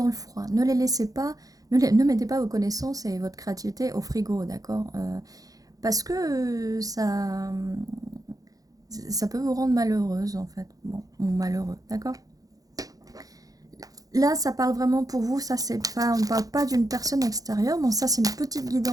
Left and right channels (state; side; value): late; left; 0.17 ms